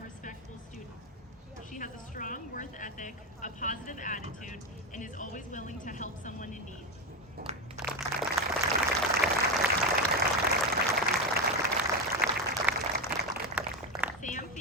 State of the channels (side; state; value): both; normal; correlation 0.14